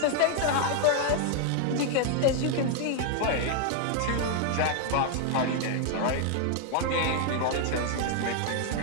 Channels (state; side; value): different; both; correlation 0.00